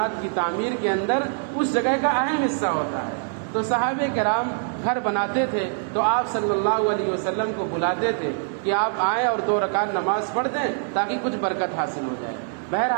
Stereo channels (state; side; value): silent; left; digital silence